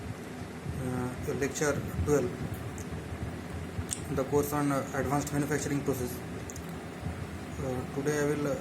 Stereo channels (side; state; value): both; identical; correlation 1.00